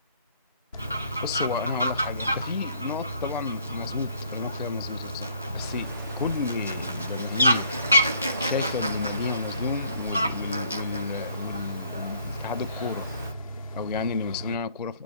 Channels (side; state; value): both; inverted; correlation -0.63